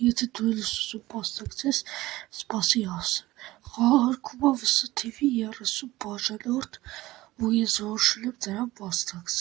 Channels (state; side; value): quieter; left; 17.7 dB